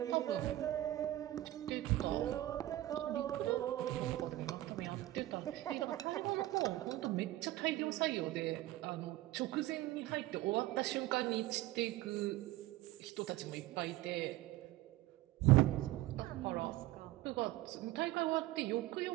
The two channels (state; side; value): quieter; left; 16.1 dB